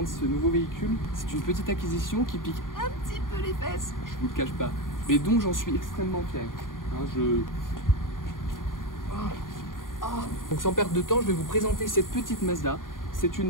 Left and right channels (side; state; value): right; late; 0.90 ms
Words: ce nouveau véhicule. C'est une petite acquisition qui pique un petit peu les fesses, je vous le cache pas, mais dont j'en suis extrêmement fier. Donc sans perdre de temps, je vais vous présenter cette petite Mazda. C'est